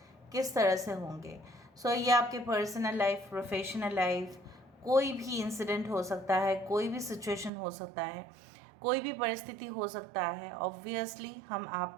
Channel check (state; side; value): drops out; left; at 7.5 s